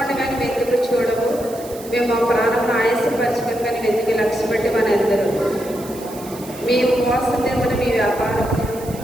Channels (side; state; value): right; noise; hiss, 17 dB below the sound